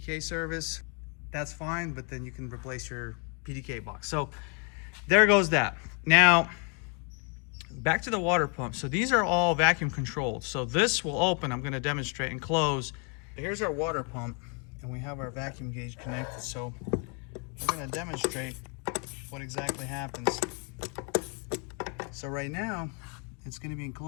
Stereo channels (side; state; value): right; quieter; 36.7 dB